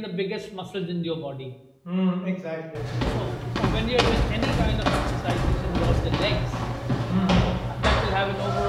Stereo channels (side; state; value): both; identical; correlation 1.00